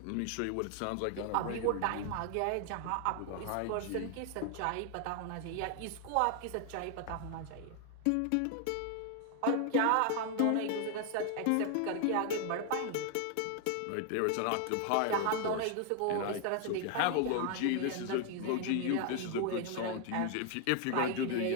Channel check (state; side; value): different; both; correlation 0.00